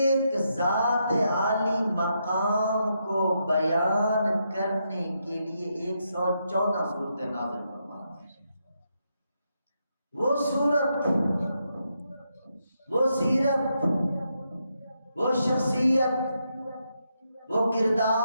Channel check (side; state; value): both; inverted; correlation -0.81